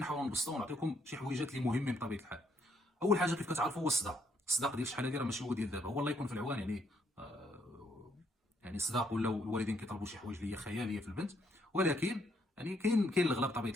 نبسطوا ونعطيكم شي حويجات اللي مهمين بطبيعه الحال. اول حاجه كيف كتعرفوا هو الصداق ديال شحال هذه راه ماشي هو ديال دابا، هو الله يكون في العوان يعني. يعني الصداق ولاو الوالدين كيطلبوا شي حوايج اللي هي خياليه في البنت، ولكن يعني كاين الغلا بطبيعه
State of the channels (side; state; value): both; normal; correlation 0.72